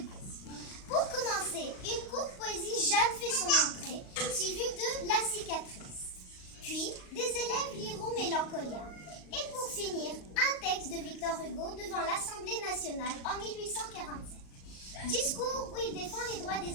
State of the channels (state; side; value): late; right; 38 ms